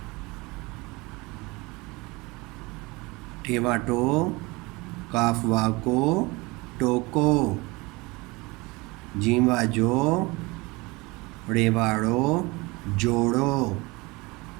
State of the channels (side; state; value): left; quieter; 24.2 dB